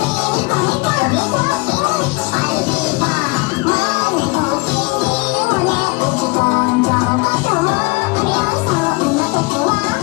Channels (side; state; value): right; quieter; 25.7 dB